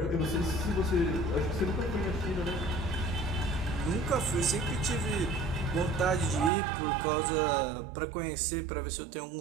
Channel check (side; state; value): left; drops out; at 6.5 s